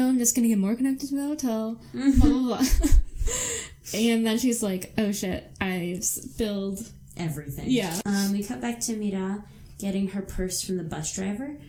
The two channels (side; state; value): both; identical; correlation 1.00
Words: just gonna get more connected to the hotel, blah, blah, blah. And then she's like, oh shit, I've spilled everything. Yeah. We cut back to Mira getting her purse from the bus driver.